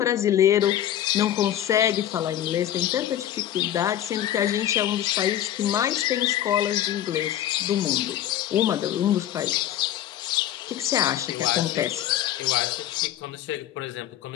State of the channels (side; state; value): right; quieter; 11.9 dB